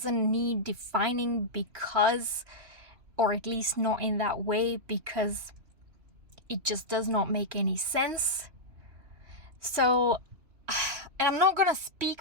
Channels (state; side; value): late; left; 3.1 ms